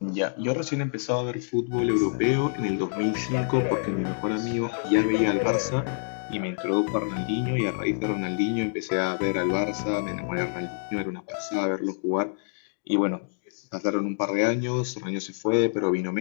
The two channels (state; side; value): silent; right; digital silence